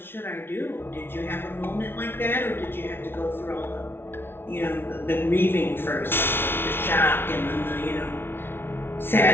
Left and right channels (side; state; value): right; late; 0.11 ms